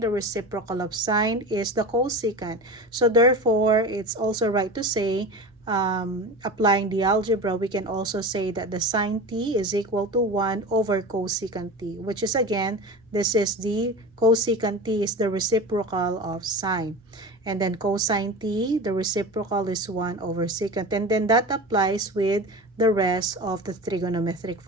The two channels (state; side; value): normal; both; correlation 0.30